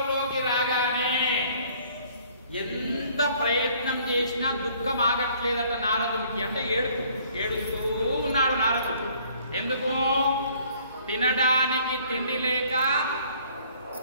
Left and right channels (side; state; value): both; inverted; correlation -0.58